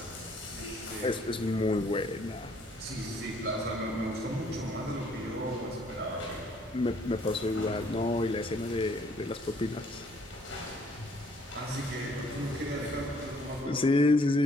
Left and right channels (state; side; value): normal; both; correlation 0.63